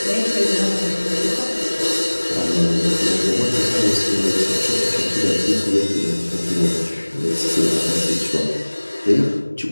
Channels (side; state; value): both; inverted; correlation -1.00